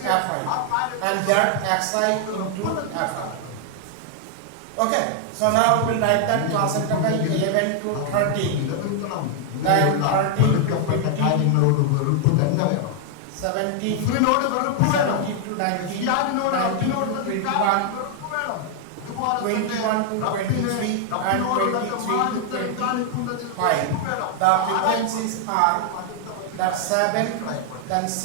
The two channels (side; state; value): both; different; correlation 0.00